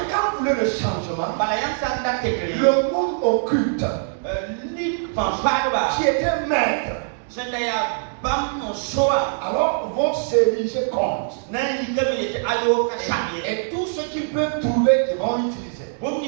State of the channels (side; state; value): left; silent; digital silence